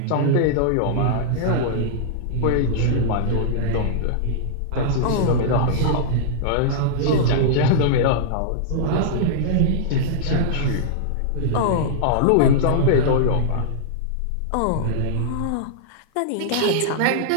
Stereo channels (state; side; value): different; both; correlation -0.02